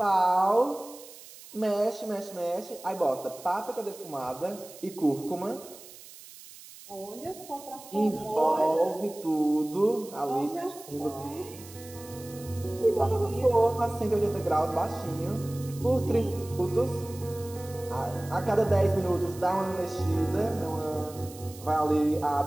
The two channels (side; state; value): right; noise; hiss, 18 dB below the sound